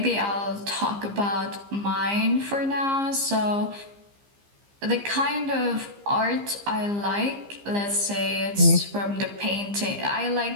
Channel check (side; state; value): left; late; 15 ms